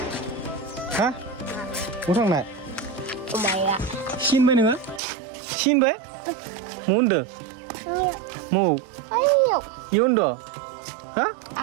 हा? बहा थांनाय? माया सिनबाय नोङो? सिनबाय? म होनदो? म ayo इ होनदो? हा?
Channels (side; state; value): left; drops out; at 5.0 s